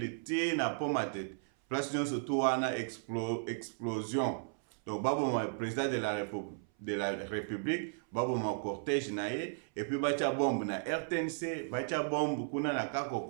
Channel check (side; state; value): left; silent; 54 dB below the other